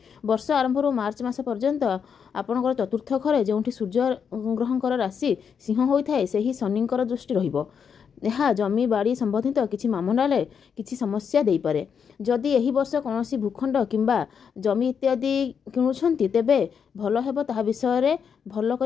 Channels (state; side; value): quieter; right; 6.9 dB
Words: ବର୍ଷ ଆରମ୍ଭରୁ ମାର୍ଚ୍ଚ ମାସ ପର୍ଯ୍ୟନ୍ତ ଆପଣଙ୍କର ଚତୁର୍ଥ ଘରେ ଯେଉଁଠି ସୂର୍ଯ୍ୟ ଗ୍ରହଙ୍କର ରାଶି ସିଂହ ହୋଇଥାଏ, ସେହି ଶନିଙ୍କର ଦୃଷ୍ଟି ରହିବ। ଏହା ଜମି ବାଡ଼ି ସମ୍ବନ୍ଧିତ କିଛି ମାମଲାରେ କିଛି ସମସ୍ୟା ଦେଇପାରେ। ଯଦି ଏହି ବର୍ଷ କୌଣସି ଭୂଖଣ୍ଡ କିମ୍ବା ଜମି ଇତ୍ୟାଦି କିଣୁଛନ୍ତି ତେବେ ଭଲ ହେବ ତାହା ବିଷୟରେ ଭଲ